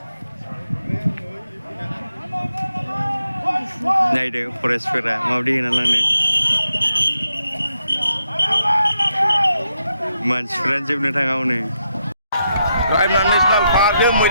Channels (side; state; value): both; inverted; correlation -0.82